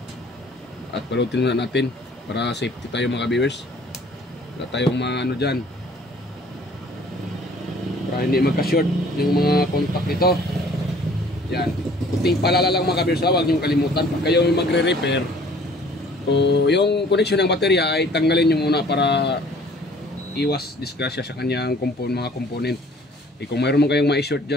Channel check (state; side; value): normal; both; correlation 0.54